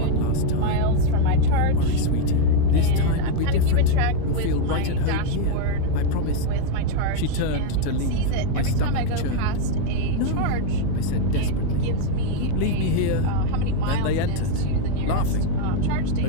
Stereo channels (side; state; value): both; different; correlation 0.01